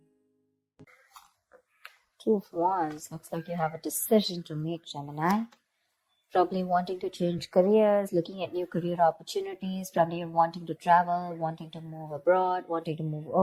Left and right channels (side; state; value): both; identical; correlation 1.00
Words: Two of Wands. Looks like you have a decision to make, Gemini. Probably wanting to change careers, looking at new career opportunities. Probably you're wanting to travel, wanting to move abroad, wanting to move